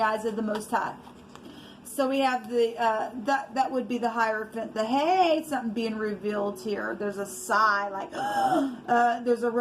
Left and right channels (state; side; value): identical; both; correlation 1.00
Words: eyes of the Most High. So we have that would be the Hierophant. Hey, something being revealed here. There's a sigh, like there's a